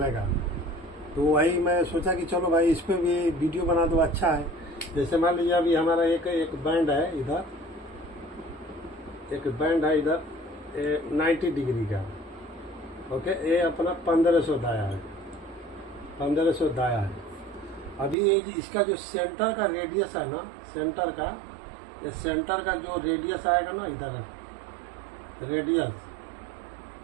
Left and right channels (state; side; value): drops out; left; at 18.2 s